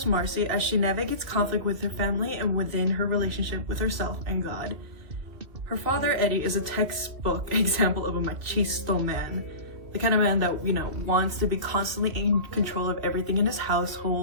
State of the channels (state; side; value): late; left; 2.5 ms